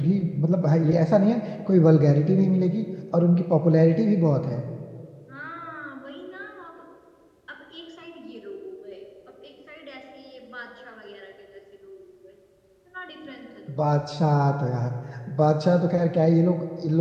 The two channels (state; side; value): identical; both; correlation 1.00